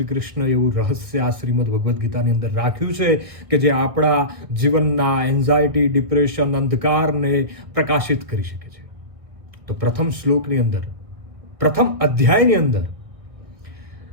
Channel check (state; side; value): late; left; 1.6 ms